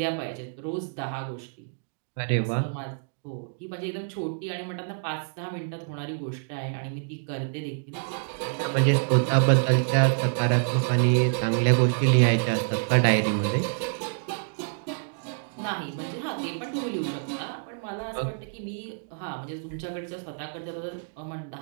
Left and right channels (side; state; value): left; silent; digital silence